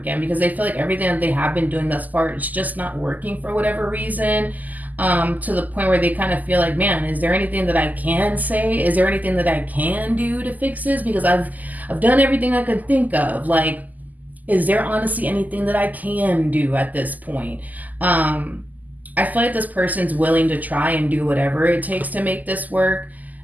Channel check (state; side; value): late; left; 0.081 ms